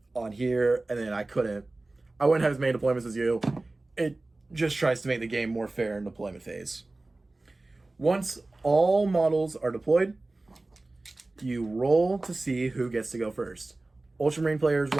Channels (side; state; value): left; quieter; 3.0 dB